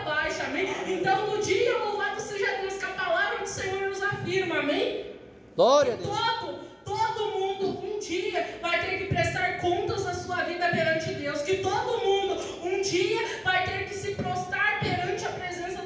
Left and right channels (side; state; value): both; identical; correlation 1.00